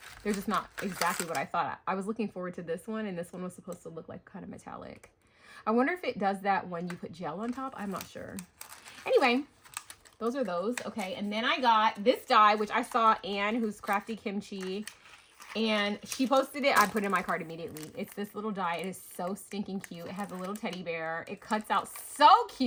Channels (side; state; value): both; identical; correlation 1.00